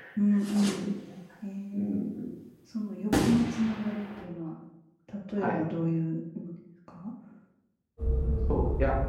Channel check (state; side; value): identical; both; correlation 1.00